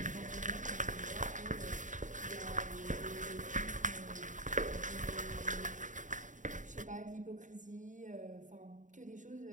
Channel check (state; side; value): late; left; 0.37 ms